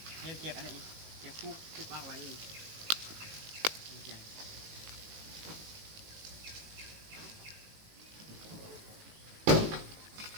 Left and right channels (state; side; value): late; left; 19 ms